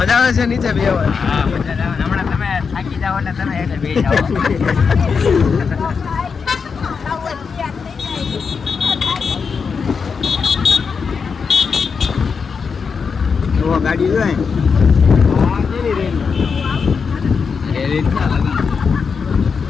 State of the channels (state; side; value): quieter; right; 5.6 dB